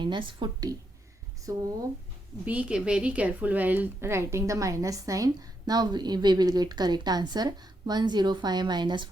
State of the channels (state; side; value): normal; both; correlation 0.80